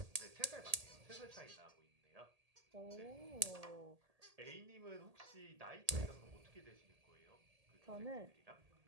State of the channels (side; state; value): left; late; 1.8 ms